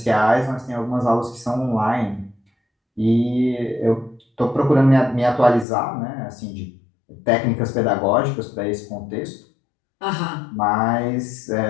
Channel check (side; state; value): right; drops out; at 5.7 s